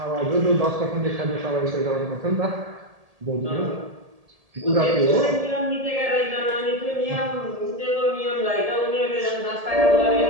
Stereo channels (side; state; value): left; late; 1.8 ms